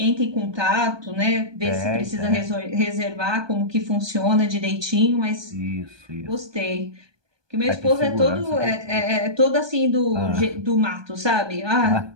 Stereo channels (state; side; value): late; left; 1.2 ms